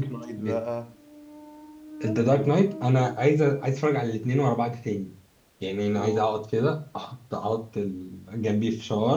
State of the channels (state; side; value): identical; both; correlation 1.00